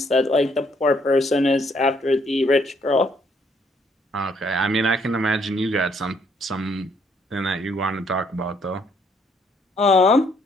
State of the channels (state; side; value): normal; both; correlation 0.68